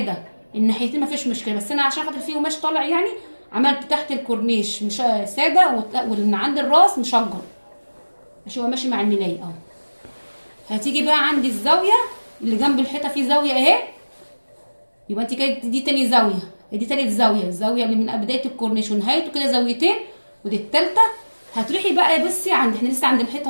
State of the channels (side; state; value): both; inverted; correlation -1.00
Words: الناحيتين مفيش مشكله، بس انا عشان خاطر فيه قماش طالع يعني عملت تحت الكورنيش مش ساده واللي عند الراس مشجر عشان هو ماشي مع الملايه اهو. هتيجي بقى عند الزاويه اللي جنب الحيطه فيه زاويه اهي، يبقى انت كده دي تاني زاويه، دي تالت زاويه، الزاويه اللي من بدايه الكورنيش ونهايته كده زاويتين، ودي التالته. هتروحي بقى بصي عند احنا لسه عند